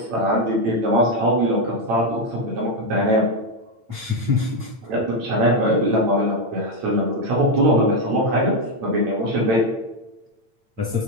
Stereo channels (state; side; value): late; left; 8.9 ms